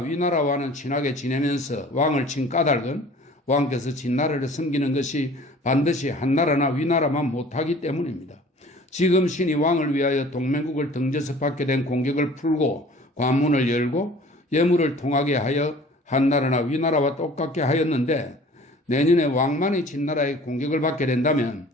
친하게 지내면서 왕을 친 까닭은 왕께서 진나라를 섬기는 것이 반드시 한나라나 위나라만 못하기 때문입니다. 지금 신이 왕을 위하여 동맹국을 등져서 받게 된 공격을 풀고 관문을 열고 예물을 통하게 하여 한나라나 위나라와 똑같게 하였는데 내년에 왕만이 진나라의 공격을 받게 된다면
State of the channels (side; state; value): both; normal; correlation 0.48